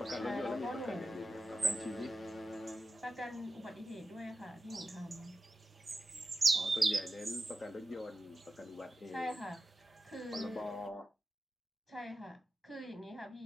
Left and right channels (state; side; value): normal; both; correlation 0.91